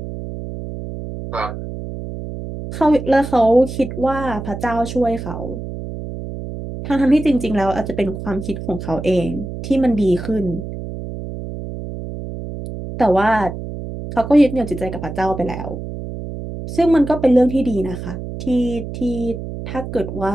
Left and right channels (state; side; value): noise; right; hum, 8 dB below the sound